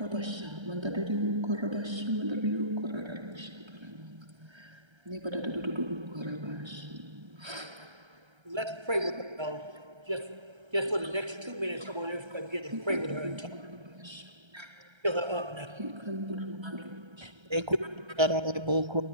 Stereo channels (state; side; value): late; left; 1.3 ms